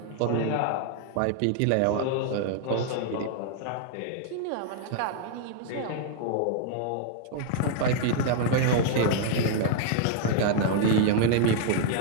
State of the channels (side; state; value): both; different; correlation -0.01